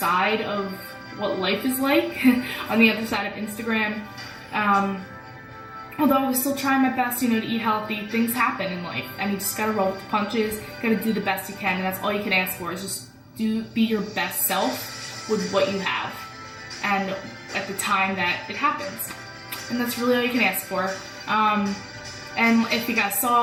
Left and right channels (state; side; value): identical; both; correlation 1.00